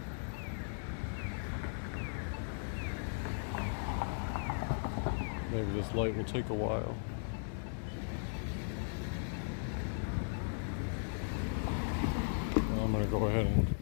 Maybe this light will take a while. Well, I'm going to go ahead and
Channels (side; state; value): right; silent; digital silence